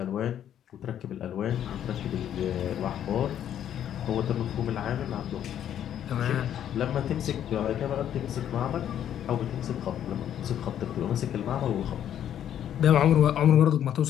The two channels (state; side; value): quieter; right; 10.2 dB